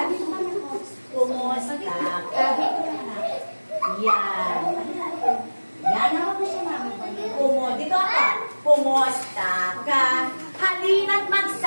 Kumusta ka? Yan. Yan, hawak mo siya. Dito ako. Kumusta ka? Halina't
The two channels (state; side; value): inverted; both; correlation -1.00